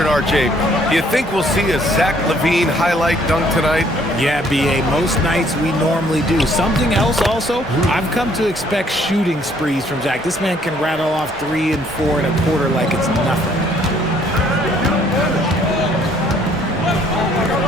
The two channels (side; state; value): both; normal; correlation 0.63